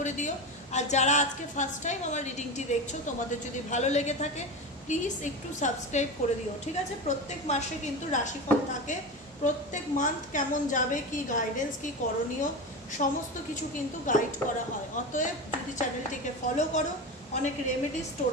দিও। আর যারা আজকে ফার্স্ট টাইম আমার রিডিংটি দেখছো, তোমাদের যদি ভালো লেগে থাকে প্লিজ একটু সাবস্ক্রাইব করে দিও, ঠিক আছে? প্রত্যেক মাসে কিন্তু রাশিফল থাকে, প্রত্যেক মান্থ কেমন যাবে, কি গাইডেন্স, কি করণীয়, সমস্ত কিছু কিন্তু গাইড করা হয়। অতএব যদি চ্যানেলটিকে ফলো করো, অনেক রেমেডিস,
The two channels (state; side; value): normal; both; correlation 0.22